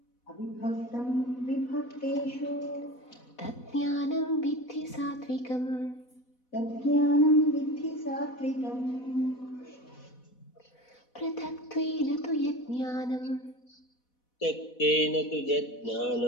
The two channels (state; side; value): late; right; 4.1 ms